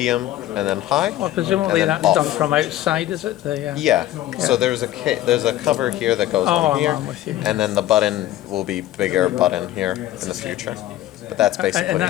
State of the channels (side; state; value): right; quieter; 14.0 dB